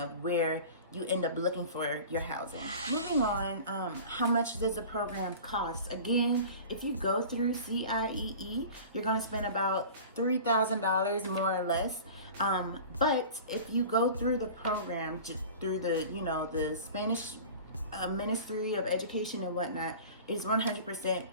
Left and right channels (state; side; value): inverted; both; correlation -0.39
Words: where you end up looking for your housing. Moving on, how much does the program cost? Again, if you go through CIEE, you're gonna spend about $3,000 more or less. But if you go through the program, just through the, you know, the Spanish Ministry of Education and whatnot, it's